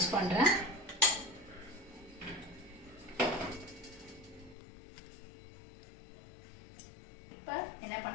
பண்ணுறேன். இப்போ என்ன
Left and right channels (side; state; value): right; drops out; at 4.5 s